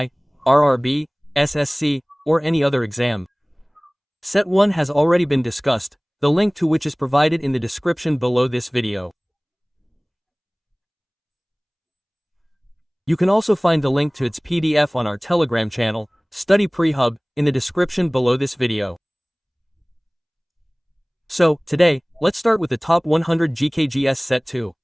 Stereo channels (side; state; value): both; identical; correlation 1.00